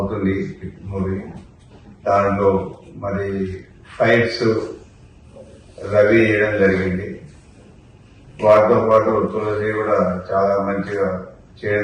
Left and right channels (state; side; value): identical; both; correlation 1.00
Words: మూవీ. దాంట్లో మరి ఫైట్స్ రవి చేయడం జరిగింది. వాటితో పాటు తులసి కూడా చాలా మంచిగా